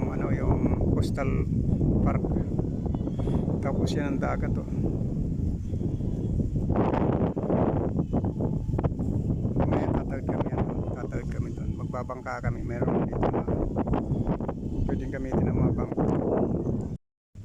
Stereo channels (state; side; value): identical; both; correlation 1.00